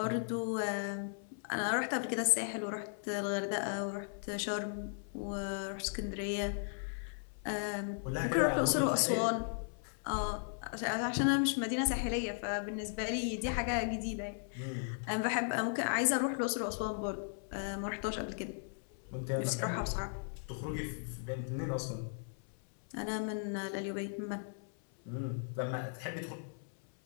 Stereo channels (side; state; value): right; silent; 53 dB below the other